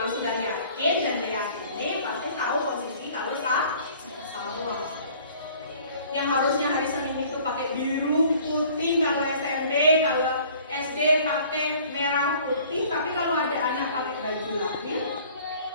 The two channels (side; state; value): both; inverted; correlation -0.52